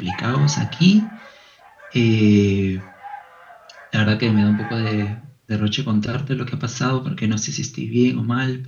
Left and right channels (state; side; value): identical; both; correlation 1.00